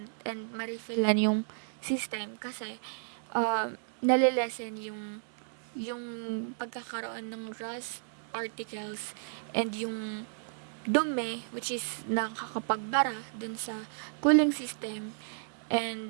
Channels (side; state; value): left; silent; digital silence